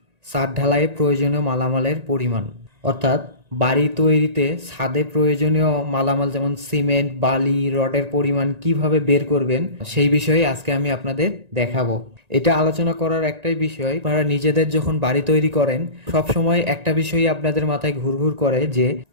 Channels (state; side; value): late; left; 1.9 ms